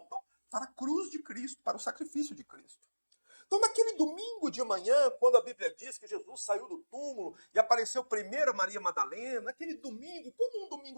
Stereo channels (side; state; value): both; inverted; correlation -1.00